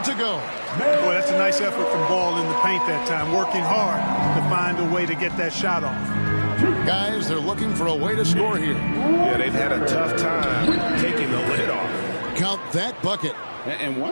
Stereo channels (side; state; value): both; inverted; correlation -1.00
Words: to go. Boy, that's a nice effort from Ball in the paint that time, working hard to find a way to get that shot off. Guys, they're looking for a way to score here. Yeah, they've had a tough time taking the lid off. Count that bucket. And